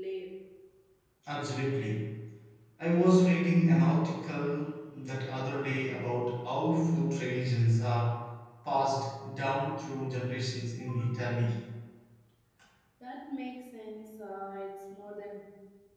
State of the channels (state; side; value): identical; both; correlation 1.00